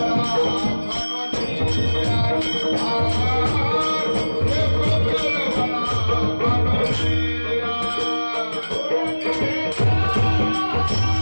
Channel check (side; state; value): both; inverted; correlation -1.00